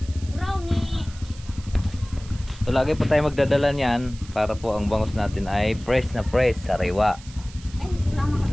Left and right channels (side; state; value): right; noise; hiss, 20 dB below the sound